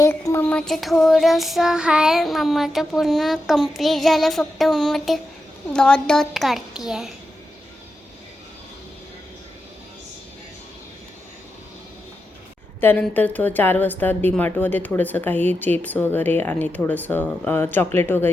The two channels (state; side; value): normal; both; correlation 0.88